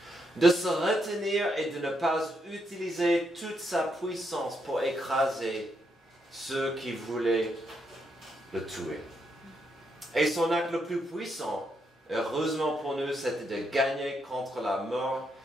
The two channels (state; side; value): normal; both; correlation 0.79